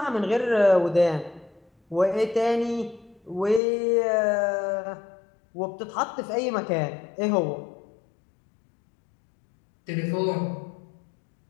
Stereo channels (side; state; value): right; drops out; at 3.6 s